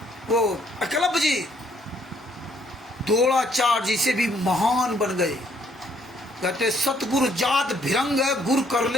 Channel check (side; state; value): both; normal; correlation 0.66